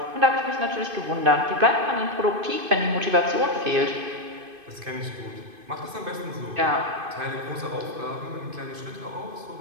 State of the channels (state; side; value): late; left; 2.5 ms